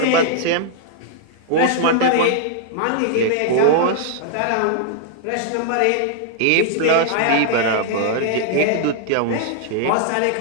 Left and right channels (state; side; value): different; both; correlation -0.01